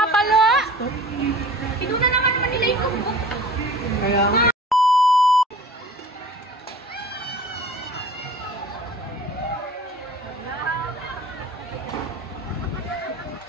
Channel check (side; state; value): both; normal; correlation 0.43